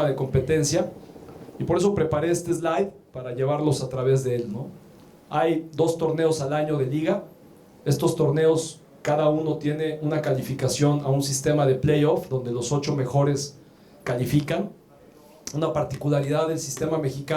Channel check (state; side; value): identical; both; correlation 1.00